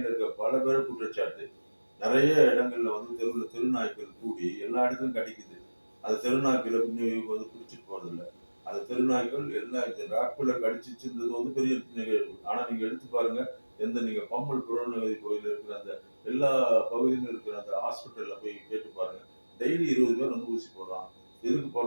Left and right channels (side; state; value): both; inverted; correlation -1.00